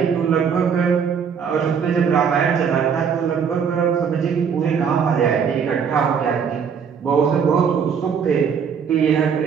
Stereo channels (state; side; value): quieter; left; 6.9 dB